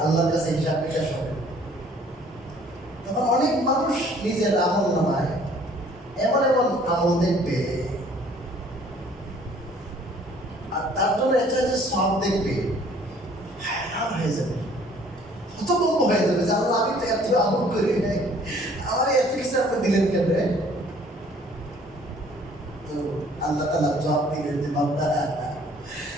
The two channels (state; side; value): normal; both; correlation 0.57